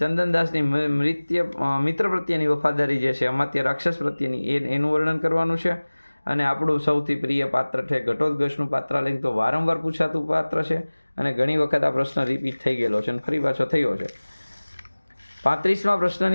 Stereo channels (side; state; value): both; inverted; correlation -1.00